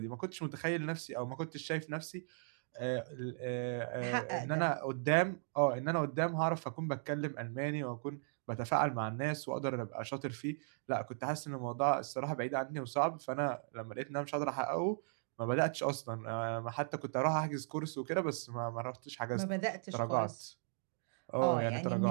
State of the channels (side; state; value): left; silent; digital silence